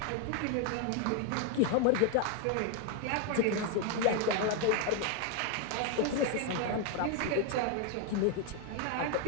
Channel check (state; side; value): different; both; correlation 0.01